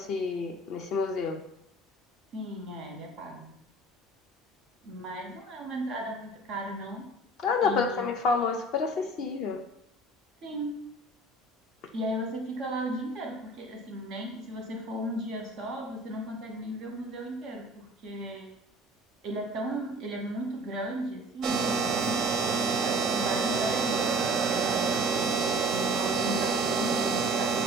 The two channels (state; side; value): normal; both; correlation 0.45